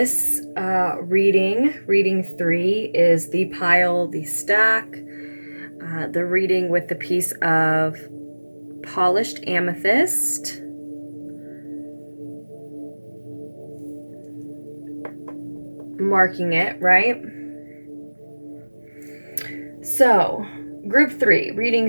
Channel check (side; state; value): both; inverted; correlation -1.00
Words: reading 3, is the pile, the stack, the reading with the piece of polished amethyst. Marking it, right? So, group 3,